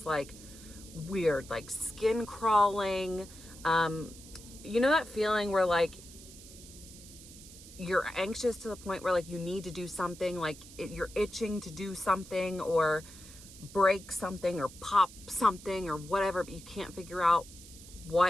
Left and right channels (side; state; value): right; noise; hiss, 18 dB below the sound